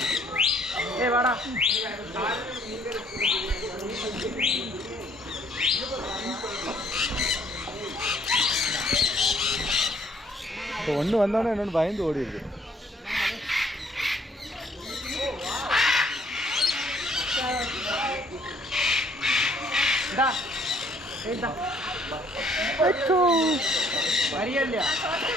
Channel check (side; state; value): both; normal; correlation 0.63